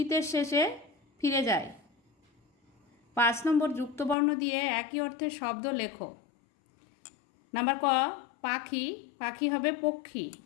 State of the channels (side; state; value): right; drops out; at 4.2 s